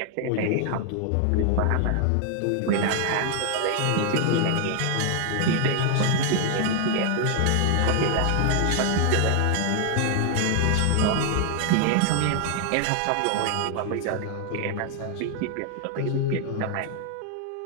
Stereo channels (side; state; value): both; different; correlation 0.00